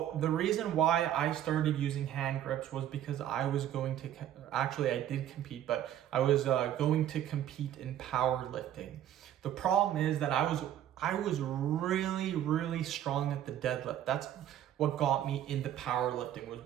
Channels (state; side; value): quieter; left; 11.2 dB